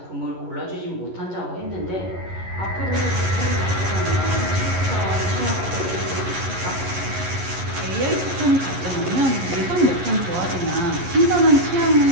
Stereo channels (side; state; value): left; late; 11 ms